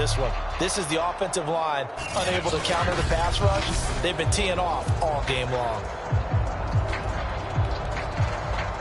one. This is the offensive line unable to counter the pass rush. They've been teeing off all game long.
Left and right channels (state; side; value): identical; both; correlation 1.00